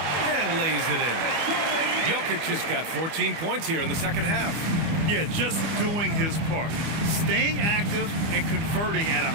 and lays it in. Jokic has got 14 points here in the second half. Yeah, just doing his part. Staying active and converting at a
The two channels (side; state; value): left; late; 25 ms